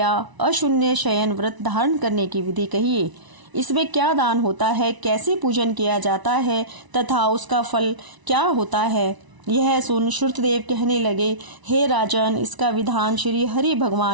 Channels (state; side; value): late; left; 1.0 ms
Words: अशून्य शयन व्रत धारण करने की विधि कहिए। इसमें क्या दान होता है, कैसे पूजन किया जाता है तथा उसका फल क्या होता है। यह सुन श्रुतदेव कहने लगे, हे राजन, इसका विधान श्री हरि